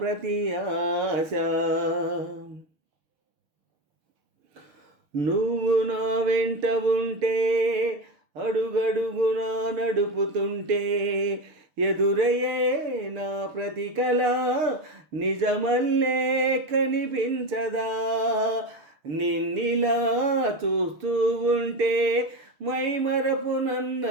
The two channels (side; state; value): left; late; 6.4 ms